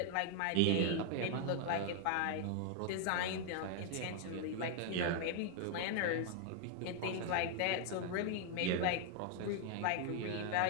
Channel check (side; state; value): both; different; correlation 0.00